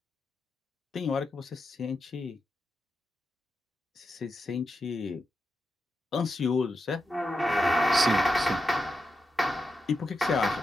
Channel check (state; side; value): normal; both; correlation 0.87